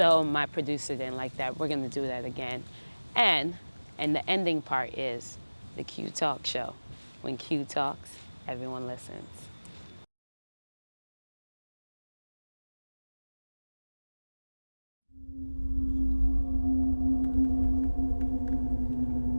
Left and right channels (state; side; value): inverted; both; correlation -1.00